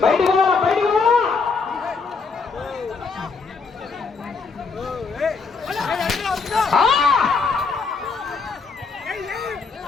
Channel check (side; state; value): right; quieter; 4.7 dB